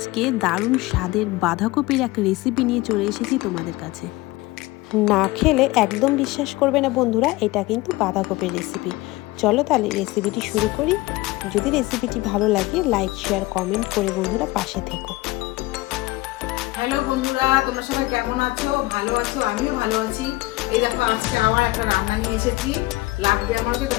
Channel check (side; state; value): right; quieter; 20.2 dB